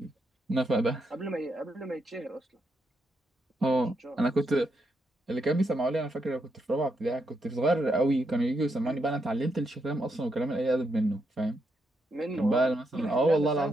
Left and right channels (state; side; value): normal; both; correlation 0.81